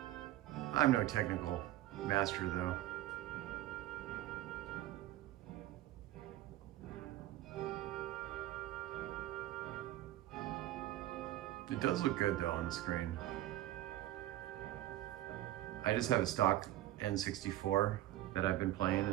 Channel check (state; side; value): quieter; left; 14.6 dB